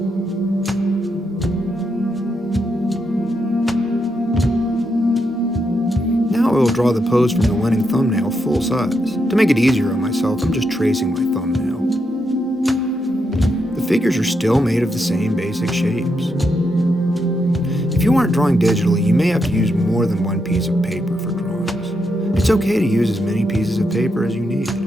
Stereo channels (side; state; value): both; normal; correlation 0.82